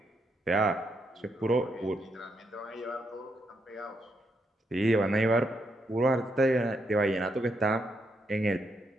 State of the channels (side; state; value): both; normal; correlation 0.79